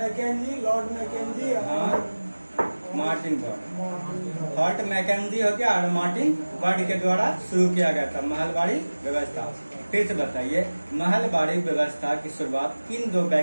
लॉर्ड मैकेंजी और मार्टिन बर्ड। हॉर्ट मैकेंजी हो गया और मार्टिन बर्ड के द्वारा शुरू किया गया था महलवाड़ी व्यवस्था। फिर से बताइए महलवाड़ी व्यवस्था की शुरुआत किन दो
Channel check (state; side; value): inverted; both; correlation -1.00